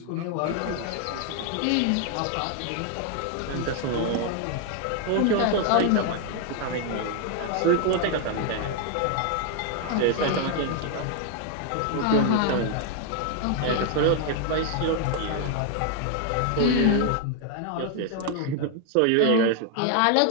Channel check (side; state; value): both; different; correlation 0.00